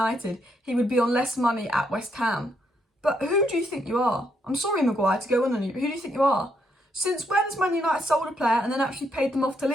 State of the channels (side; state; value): both; normal; correlation 0.76